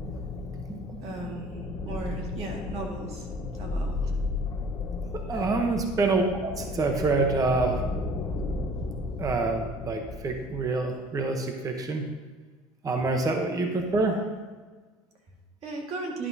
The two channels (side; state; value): both; normal; correlation 0.51